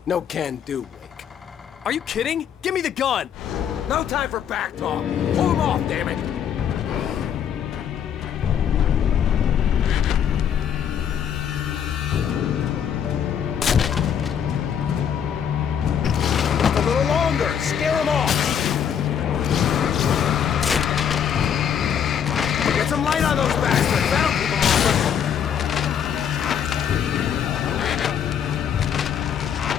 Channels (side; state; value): right; quieter; 8.4 dB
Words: no can do, Wake. Are you kidding? Give me the gun! No time for back talk. Pull them off, damn it. A little longer. Scare them off. Get some light on those bastards. That'll keep them off us.